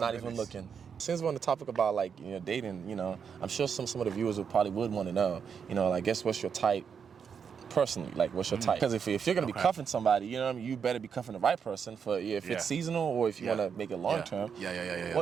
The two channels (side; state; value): left; quieter; 6.8 dB